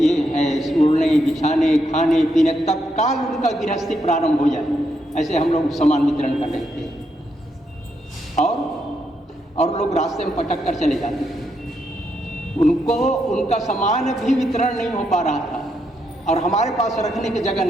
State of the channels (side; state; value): both; normal; correlation 0.79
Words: है, ओढ़ने बिछाने खाने पीने, तत्काल उनका गृहस्थी प्रारंभ हो जाए, ऐसे हम लोग सामान वितरण कर रहे थे। और लोग रास्ते में पटक कर चले जाते थे। उनको उनका सामान भी वितरण नहीं हो पा रहा था और हमारे पास रखने की जगह